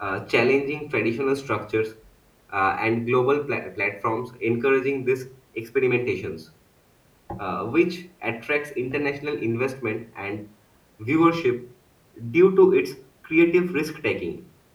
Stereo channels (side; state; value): both; identical; correlation 1.00